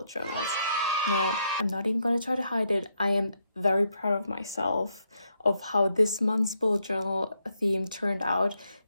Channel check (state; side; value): inverted; both; correlation -0.77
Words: journals. Now I'm not even going to try to hide it. I am very proud of myself of how this month's bullet journal theme turned out.